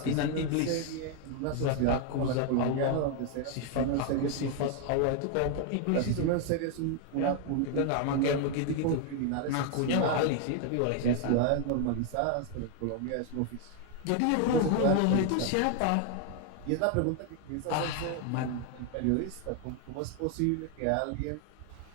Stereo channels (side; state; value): both; different; correlation 0.00